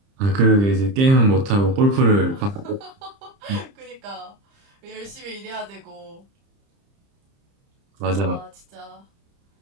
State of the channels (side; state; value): left; late; 30 ms